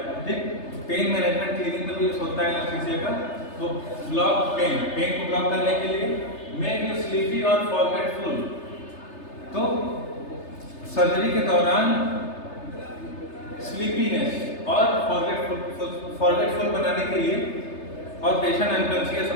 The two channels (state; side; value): late; right; 3.3 ms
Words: ठीक। पेन मैनेजमेंट क्लिनिक में भी यूज होता है एनेस्थीसिया का। तो ब्लॉक पेन को ब्लॉक करने के लिए, मेक यू स्लीपी और फॉरगेटफुल, तो सर्जरी के दौरान स्लीपीनेस और फॉरगेटफुल बनाने के लिए और पेशेंट अनकॉन्शियस